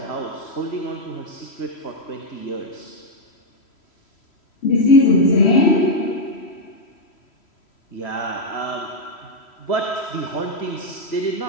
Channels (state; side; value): late; right; 3.1 ms